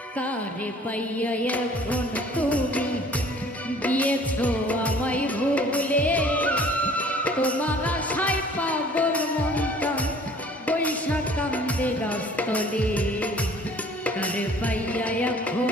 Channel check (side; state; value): both; normal; correlation 0.52